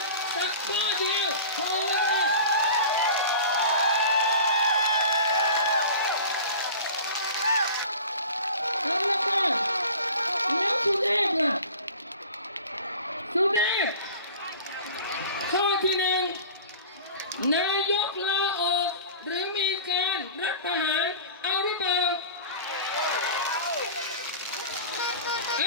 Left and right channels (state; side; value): inverted; both; correlation -0.39